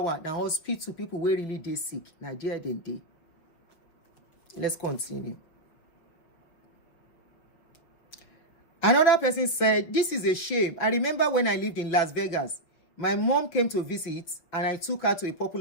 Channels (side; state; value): right; late; 6.3 ms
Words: now hospital people were really dey sick. Now there they dey. Let's continue. Another person said, this is a shame. I remember when I lived in Las Vegas, my mom came to visit and I took her to a